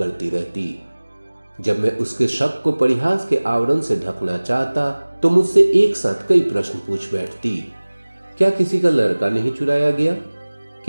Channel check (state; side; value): inverted; both; correlation -1.00